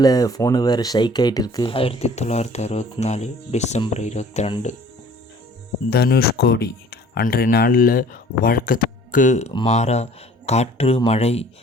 ஃபோனு வேறு ஷைக் ஆகிட்டு இருக்கு. 1964 டிசம்பர் 22 தனுஷ்கோடி. அன்றைய நாளில் வழக்கத்துக்கு மாறாக காற்று மழை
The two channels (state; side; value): normal; both; correlation 0.52